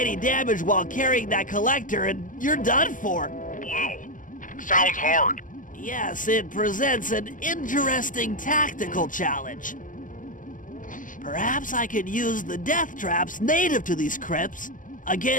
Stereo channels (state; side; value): late; right; 0.38 ms